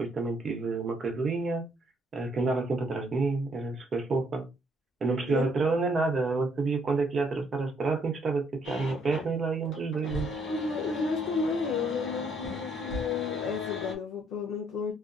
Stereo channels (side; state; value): both; normal; correlation 0.68